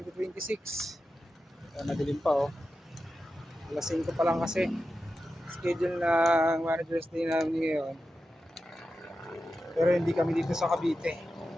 Madilim pa oh. Alas 5 pa lang kasi. Schedule ng Manager's Day namin ngayon. Pero hindi kami dito sa Cavite.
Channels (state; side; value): normal; both; correlation 0.91